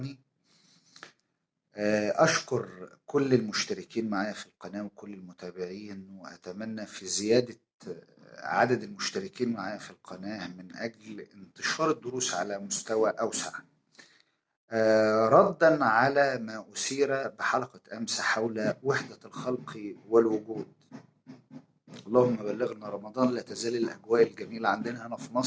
أشكر كل المشتركين معايا في القناة وكل المتابعين، وأتمنى في زيادة عدد المشتركين معايا في القناة من أجل انتشار الدروس على مستوى أوسع. ردا على ما أثير بحلقة أمس حول وحدة الخلق والوجود. اللهم بلغنا رمضان. لا تزال الأجواء الجميلة عندنا هنا في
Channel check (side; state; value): both; identical; correlation 1.00